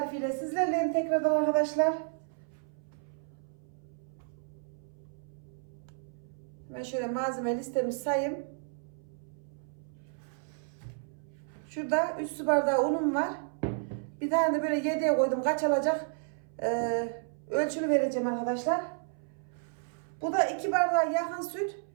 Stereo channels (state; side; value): silent; left; 56 dB below the other